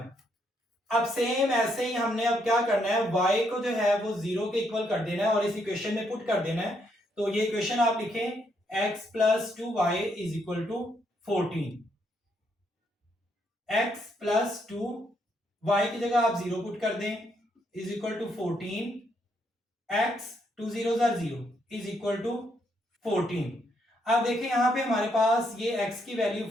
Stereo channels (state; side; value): normal; both; correlation 0.75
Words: अब सेम ऐसे ही हमने अब क्या करना है, y को जो है वो 0 के इक्वल कर देना है और इस इक्वेशन में पुट कर देना है। तो ये इक्वेशन आप लिखें x plus 2y is equal to 14। x plus 2 y की जगह आप 0 पुट कर दें is equal to 14। x 2 0 is equal to 14। अब देखिए यहां पे हमारे पास ये x की वैल्यू